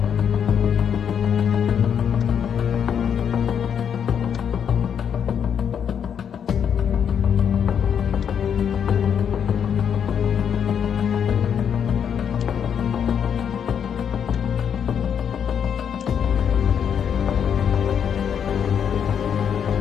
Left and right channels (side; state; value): right; quieter; 8.0 dB